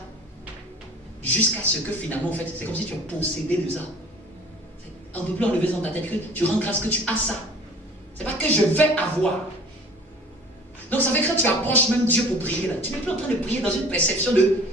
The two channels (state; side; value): normal; both; correlation 0.47